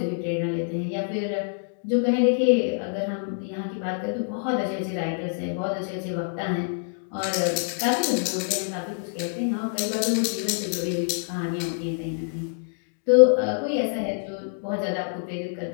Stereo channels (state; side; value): silent; right; digital silence